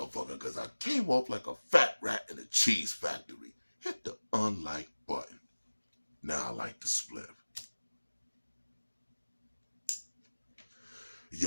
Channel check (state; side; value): inverted; both; correlation -1.00